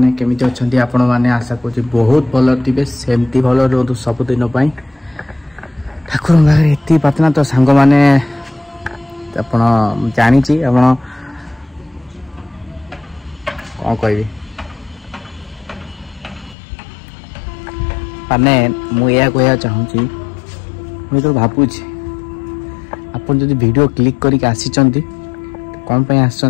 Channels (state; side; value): drops out; right; at 16.6 s